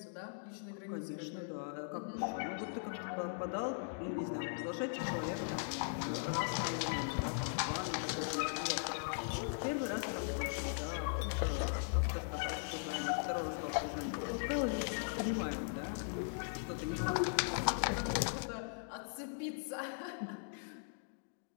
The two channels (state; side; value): silent; right; digital silence